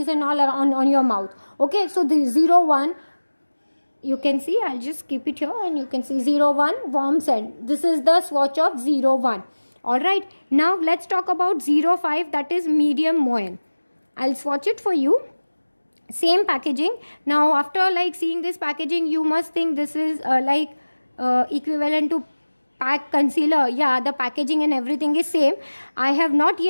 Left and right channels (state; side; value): inverted; both; correlation -1.00